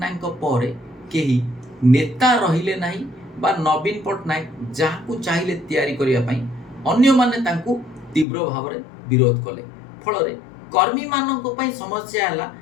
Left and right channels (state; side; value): drops out; right; at 8.2 s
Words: ପରେ କେହି ନେତା ରହିଲେ ନାହିଁ ବା ନବୀନ ପଟ୍ଟନାୟକ ଯାହାକୁ ଚାହିଁଲେ ତିଆରି କରିବା ପାଇଁ ଅନ୍ୟମାନେ ତାଙ୍କୁ ତୀବ୍ର ଭାବରେ ବିରୋଧ କଲେ। ଫଳରେ କର୍ମୀମାନଙ୍କ ପାଇଁ ସମସ୍ୟା ହେଲା